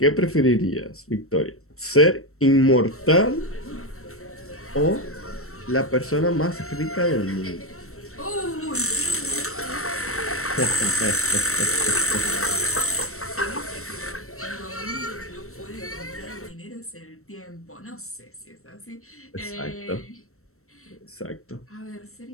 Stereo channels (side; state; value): right; late; 0.63 ms